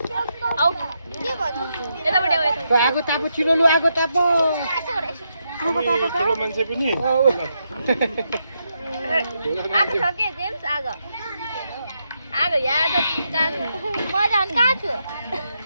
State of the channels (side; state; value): both; inverted; correlation -0.82